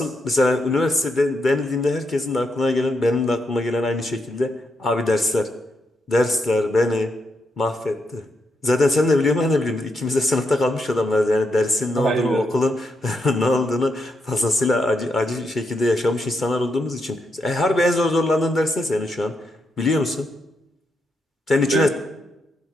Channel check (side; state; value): both; normal; correlation 0.81